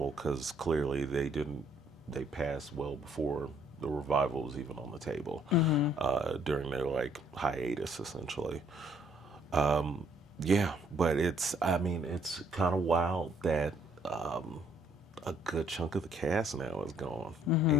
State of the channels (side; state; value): both; normal; correlation 0.65